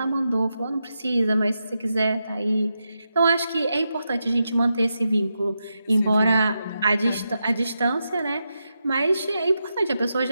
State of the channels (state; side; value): inverted; both; correlation -0.87